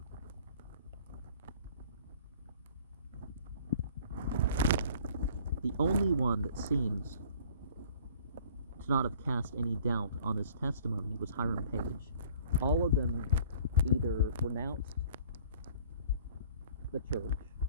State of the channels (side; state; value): both; inverted; correlation -0.53